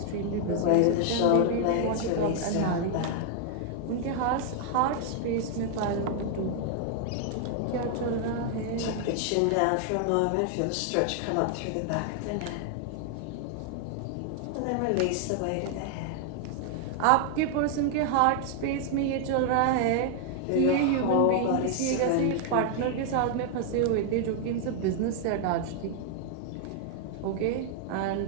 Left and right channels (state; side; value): different; both; correlation 0.00